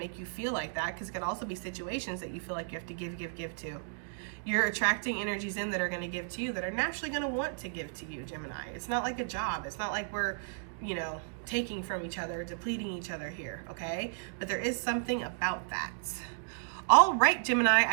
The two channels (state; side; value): silent; left; digital silence